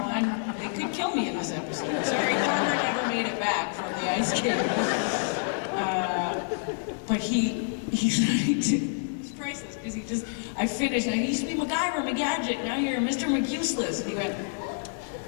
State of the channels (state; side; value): silent; right; digital silence